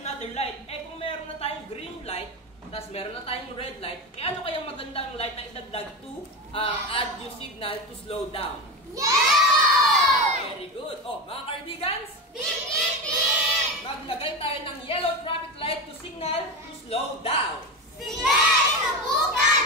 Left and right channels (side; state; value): both; normal; correlation 0.21